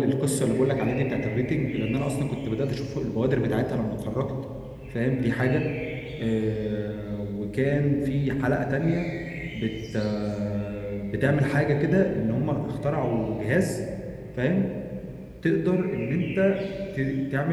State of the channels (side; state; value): both; identical; correlation 1.00